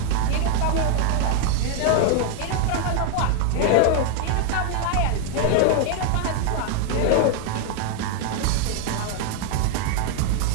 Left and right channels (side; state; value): both; different; correlation 0.00